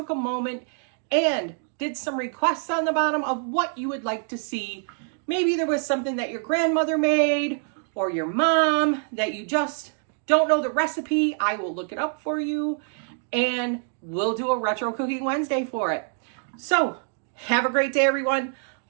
a moment and did some requests on the bottom of what you would like to see. Maybe there was something that your grandmother made or your mom that you just don't know the recipe. I will look it up for you, and we'll do a Retro Cooking Wednesday for it. So have a great day, everyone.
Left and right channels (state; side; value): silent; left; 56 dB below the other